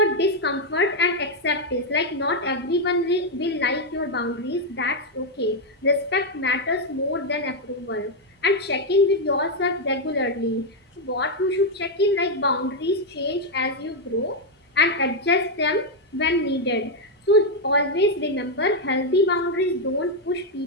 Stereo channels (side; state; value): both; normal; correlation 0.02